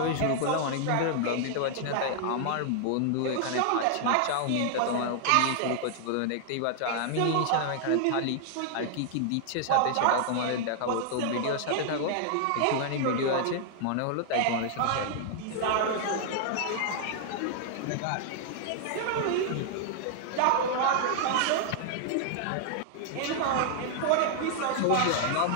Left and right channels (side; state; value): both; different; correlation 0.00